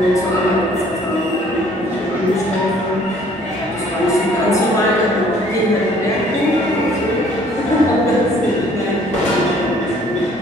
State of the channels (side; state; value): both; normal; correlation 0.58